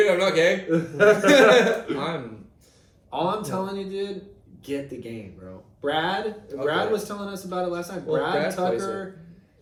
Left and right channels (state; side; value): identical; both; correlation 1.00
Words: I'm not gay. I'm All I'm telling you, dude, get the game, bro. Brad Okay. was telling us about it last night. Well, Brad, Brad plays Tucker,